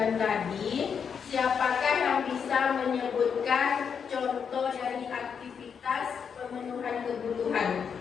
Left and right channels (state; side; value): quieter; right; 6.8 dB